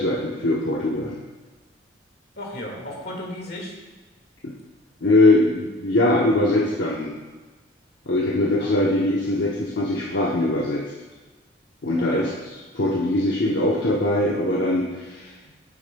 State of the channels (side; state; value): both; normal; correlation 0.43